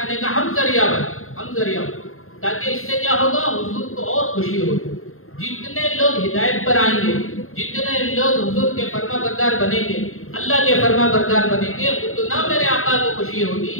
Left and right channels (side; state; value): right; late; 0.61 ms